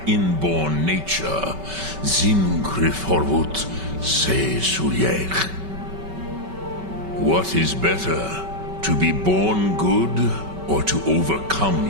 inborn nature. Zimgrifforwut se suliech. What is better, to be born good, or to overcome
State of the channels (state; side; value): late; left; 5.2 ms